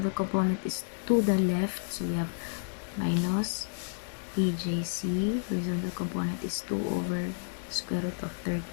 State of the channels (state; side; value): silent; right; digital silence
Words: component is to the left, so we have minus PJC, horizontal component is 2 over square root of